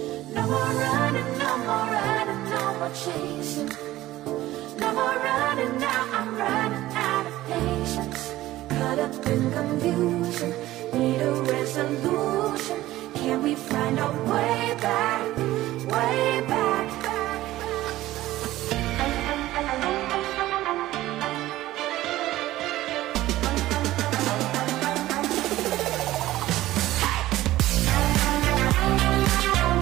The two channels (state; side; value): quieter; left; 15.9 dB